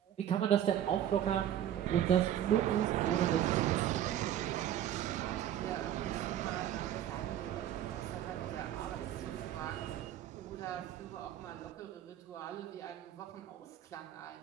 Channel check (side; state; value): left; quieter; 11.1 dB